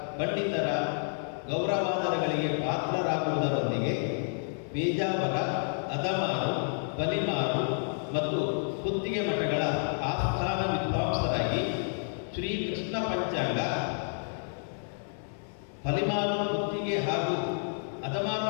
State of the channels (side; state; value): right; silent; 58 dB below the other